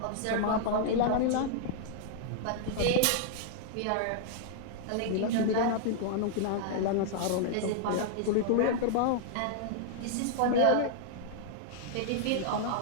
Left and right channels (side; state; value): both; different; correlation -0.01